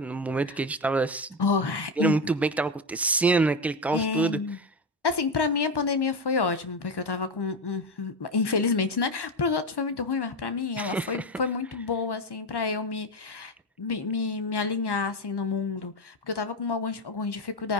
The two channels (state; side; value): normal; both; correlation 0.15